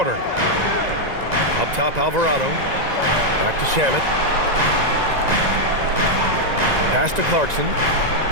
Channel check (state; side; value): late; left; 1.9 ms